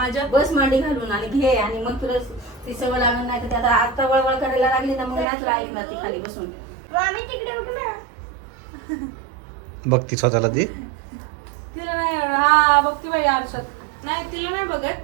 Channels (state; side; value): drops out; left; at 5.2 s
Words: बस मांडी घालून आणि घे आणि मग तुला ती सवय लागणार नाही तर ते आता वळवळ करायला लागली ना मग नाही तुला ऐकणार ती खाली बसून. बघती स्वतःला ती. तिला नाही एवढं हा बघते बाई आरशात. नाही तिला नाही बघत.